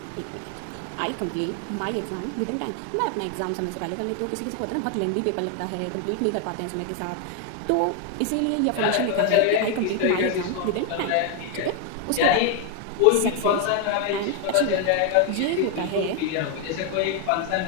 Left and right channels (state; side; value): different; both; correlation 0.01